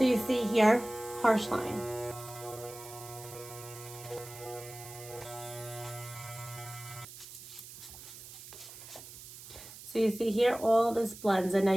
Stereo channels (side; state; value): right; noise; hiss, 15 dB below the sound